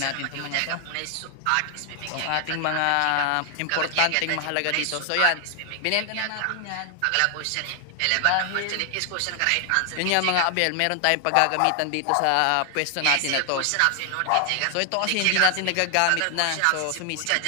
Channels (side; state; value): both; different; correlation 0.00